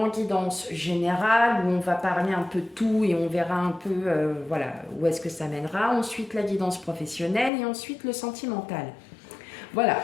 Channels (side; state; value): right; drops out; at 7.5 s